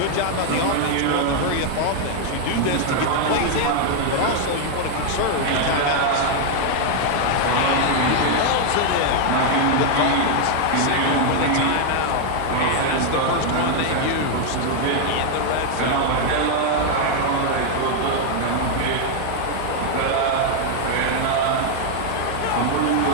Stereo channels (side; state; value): both; different; correlation 0.00